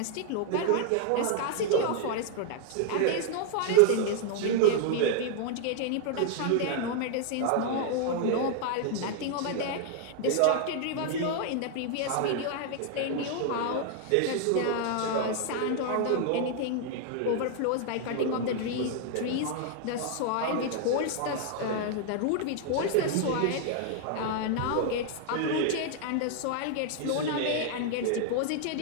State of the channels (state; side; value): different; both; correlation 0.00